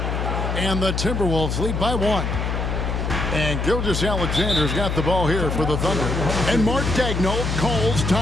And the Timberwolves lead by 1. And Gilgeous-Alexander's got the ball here for the Thunder. And Mark Daigneault calls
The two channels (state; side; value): noise; left; hum, 1 dB below the sound